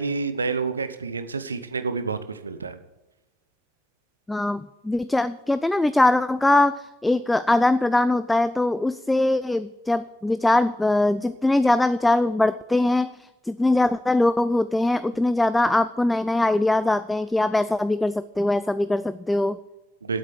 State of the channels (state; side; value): normal; both; correlation 0.89